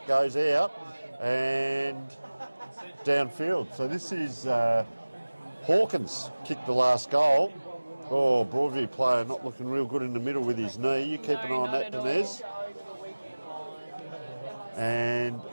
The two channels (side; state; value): both; inverted; correlation -1.00